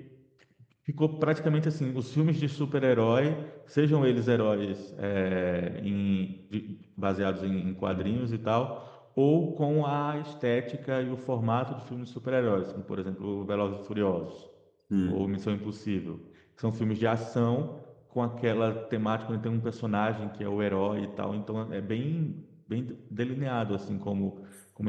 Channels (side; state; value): both; identical; correlation 1.00